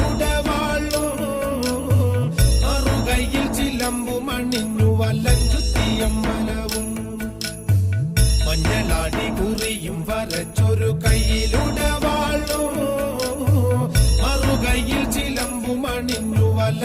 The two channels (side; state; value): both; identical; correlation 1.00